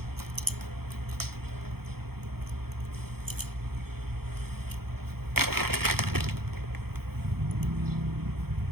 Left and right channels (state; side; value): late; left; 0.95 ms